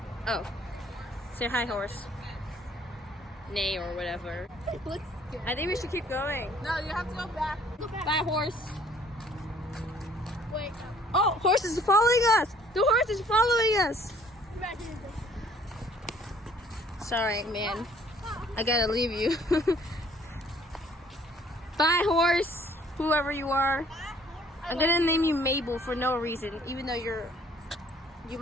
Oh. Say hi, horse. Nay or whatever. Looks good. I think we should keep going. No, you have to go back. Go back. Bye, horse. Wait. Oh, horse is following us. The horse is following us. Go back here. Sorry, man. I gotta leave you. Bye, horse. Whoever you are. I'm gonna name you Mabel for no reason, even though you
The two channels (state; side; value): normal; both; correlation 0.58